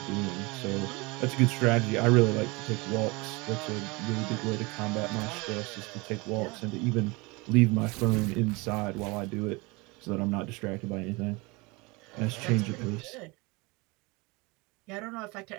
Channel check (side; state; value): left; quieter; 25.8 dB